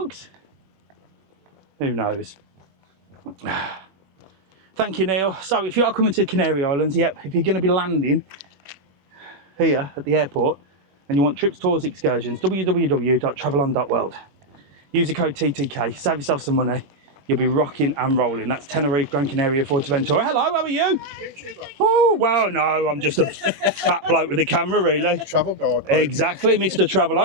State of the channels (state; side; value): late; left; 21 ms